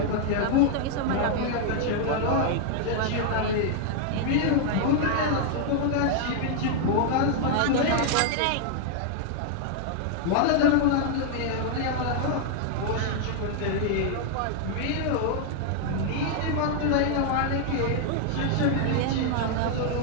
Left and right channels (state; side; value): different; both; correlation 0.00